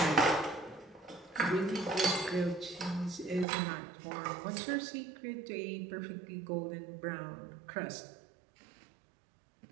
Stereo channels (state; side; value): drops out; left; at 3.5 s